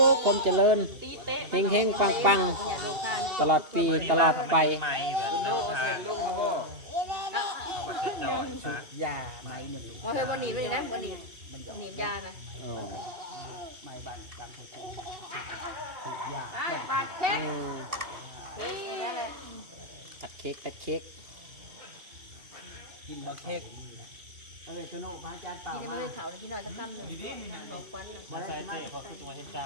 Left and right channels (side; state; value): left; late; 2.7 ms